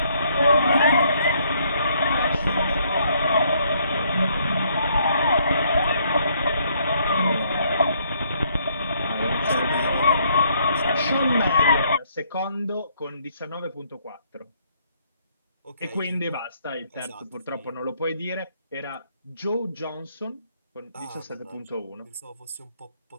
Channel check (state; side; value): inverted; both; correlation -0.68